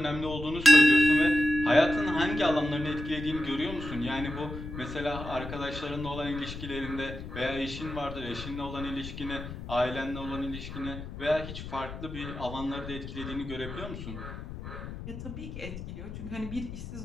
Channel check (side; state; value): left; noise; rumble, 10 dB below the sound